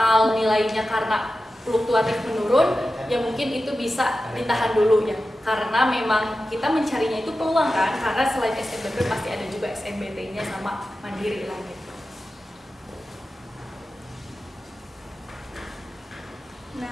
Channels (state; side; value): normal; both; correlation 0.93